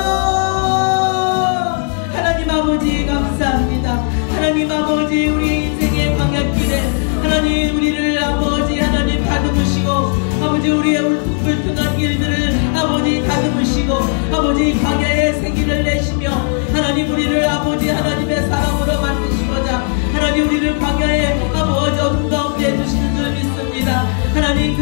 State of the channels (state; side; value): silent; right; 59 dB below the other